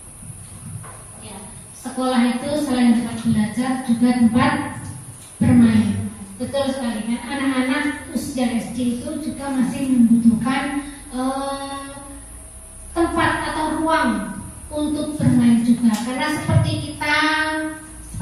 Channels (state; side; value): identical; both; correlation 1.00